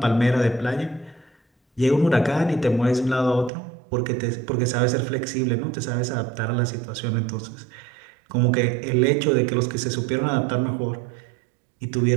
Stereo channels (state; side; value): drops out; left; at 3.5 s